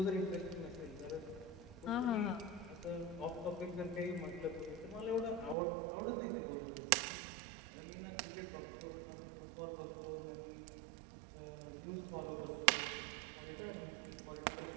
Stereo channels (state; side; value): drops out; left; at 5.6 s